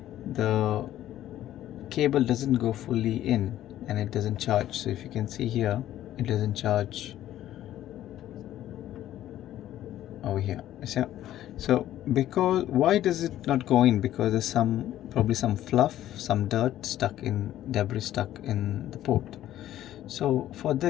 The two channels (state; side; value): quieter; right; 12.9 dB